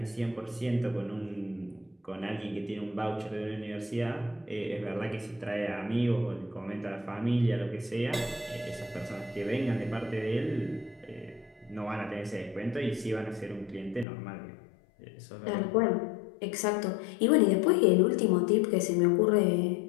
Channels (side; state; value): right; drops out; at 14.1 s